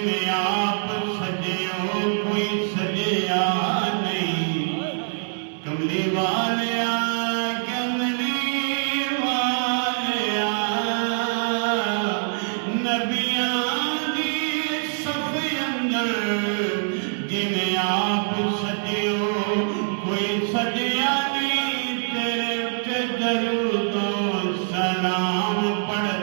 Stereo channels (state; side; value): silent; left; 57 dB below the other